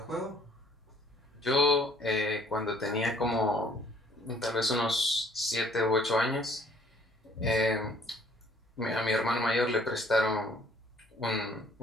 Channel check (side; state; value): both; normal; correlation 0.60